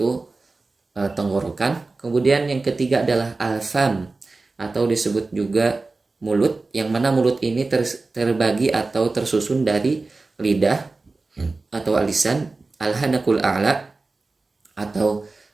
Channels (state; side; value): quieter; left; 3.6 dB